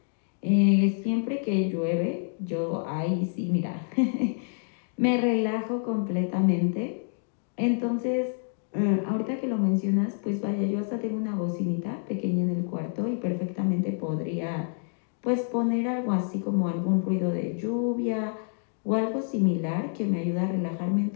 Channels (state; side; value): silent; right; 59 dB below the other